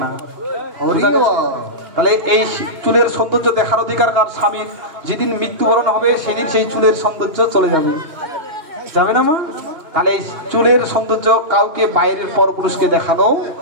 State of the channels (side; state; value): left; late; 2.9 ms